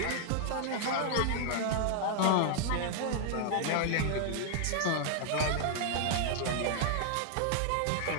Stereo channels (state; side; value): different; both; correlation 0.00